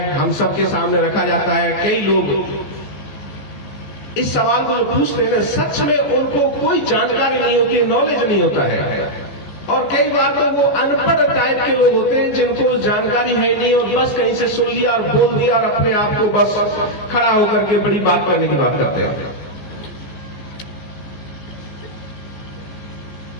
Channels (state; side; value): late; right; 14 ms